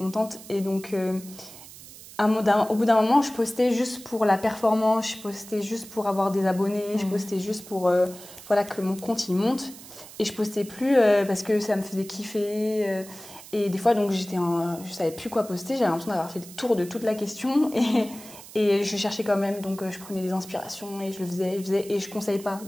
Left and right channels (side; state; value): right; noise; hiss, 17 dB below the sound